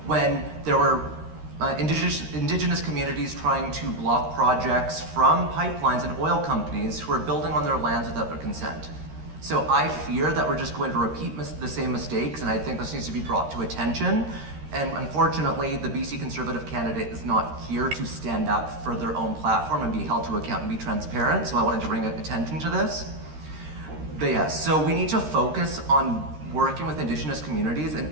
when there were indigenous communities trying to block projects from pipelines and oil companies who are building on their lands without their consent. So I fear that we're just going to repeat the same mistakes, and I think this needs to be brought to attention. And unfortunately, the BC Conservative candidate is not here to stand up for their own platform and be held to account and be transparent, so I wanted to bring attention to this. But yeah, so we need to focus on working with Indigenous communities, and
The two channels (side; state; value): left; late; 13 ms